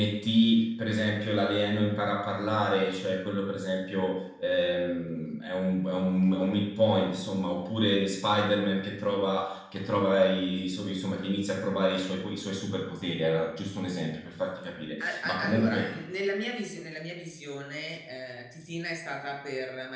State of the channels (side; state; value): both; identical; correlation 1.00